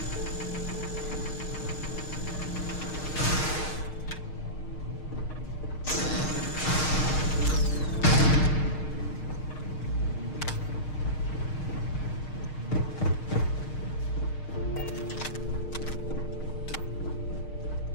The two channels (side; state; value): right; late; 6.5 ms